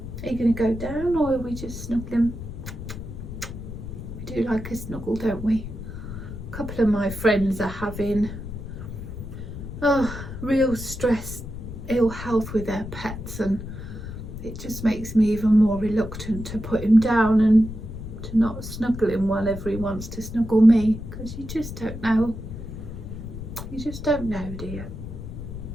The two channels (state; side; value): noise; left; rumble, 9 dB below the sound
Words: Are you going to go down, or are we just snuggling? We do like a snuggle, don't we? A couple of my friends are having real stress, ill health with their pets, and it just makes me even more reluctant to put him down and to not snuggle him whenever he wants to snuggle me, because you just don't know. You just don't know, do you?